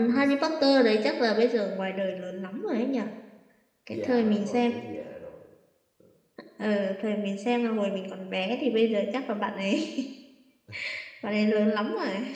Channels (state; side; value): identical; both; correlation 1.00